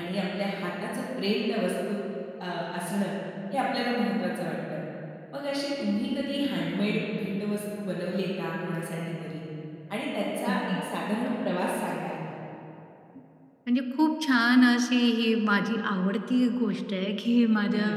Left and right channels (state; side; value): identical; both; correlation 1.00